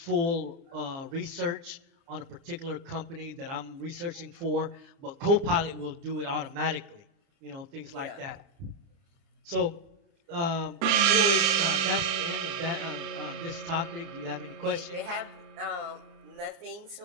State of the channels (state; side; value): late; left; 29 ms